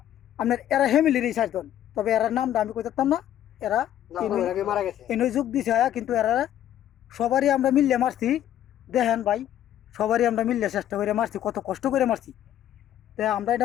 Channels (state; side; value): quieter; right; 11.5 dB